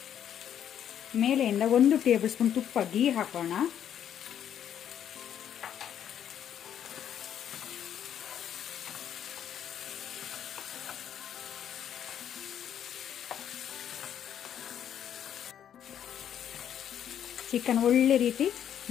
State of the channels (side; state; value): right; quieter; 9.6 dB